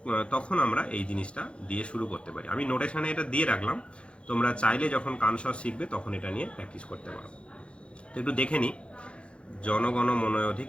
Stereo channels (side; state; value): right; late; 0.058 ms